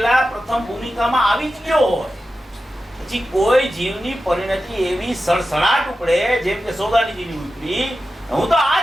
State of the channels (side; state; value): both; normal; correlation 0.92